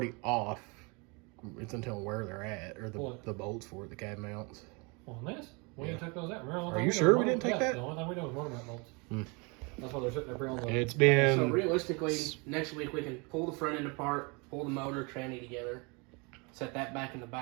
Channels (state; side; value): quieter; left; 29.9 dB